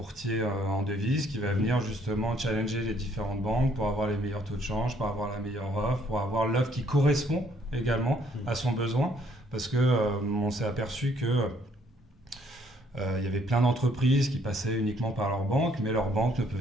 en devises qui va venir justement challenger les différentes banques pour avoir les meilleurs taux de change, pour avoir la meilleure offre, pour avoir l'offre qui correspond également à son besoin. Parce qu'on s'est aperçu que il y avait plein d'entreprises qui passaient uniquement par leur banque, mais leur banque ne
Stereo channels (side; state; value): both; normal; correlation 0.65